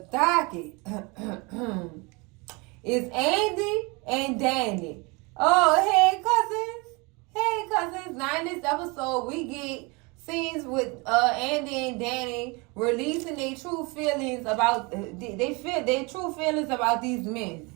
docket is Andy and Danny. Oh, hey, cousins. Hey, cousins. Now in this episode, we get scenes with Andy and Danny releasing their true feelings about their true feelings about these men.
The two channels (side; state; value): left; quieter; 27.9 dB